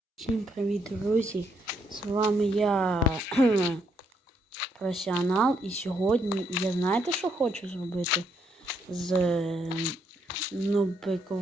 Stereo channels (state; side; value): normal; both; correlation 0.74